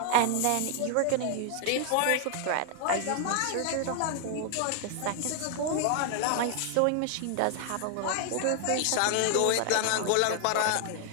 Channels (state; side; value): different; both; correlation 0.00